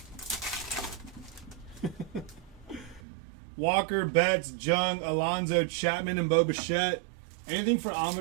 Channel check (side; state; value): left; drops out; at 3.0 s